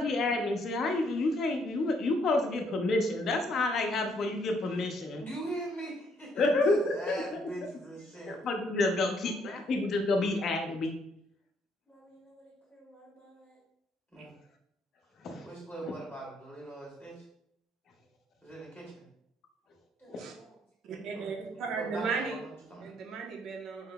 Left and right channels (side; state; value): both; normal; correlation 0.70